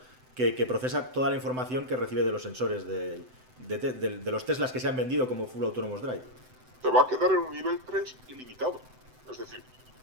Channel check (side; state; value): left; late; 7.9 ms